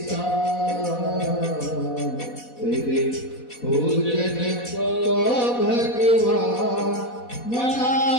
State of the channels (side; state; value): right; late; 4.1 ms